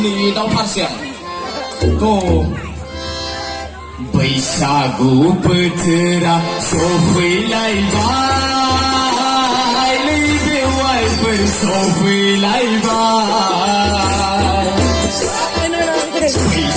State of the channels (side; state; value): both; identical; correlation 1.00